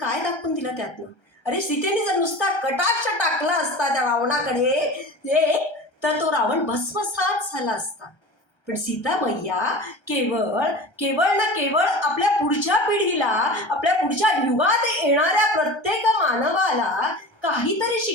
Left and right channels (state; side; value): late; right; 1.3 ms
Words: दाखवून दिलं त्यातनं? अरे सीतेने जर नुसता कटाक्ष टाकला असता त्या रावणाकडे तर तो रावण भस्मसात झाला असता. पण सीता मैया केवळ केवळ ना केवळ आपल्या पुढच्या पिढीला, आपल्या पुढच्या युगात येणाऱ्या प्रत्येक मानवाला काहीतरी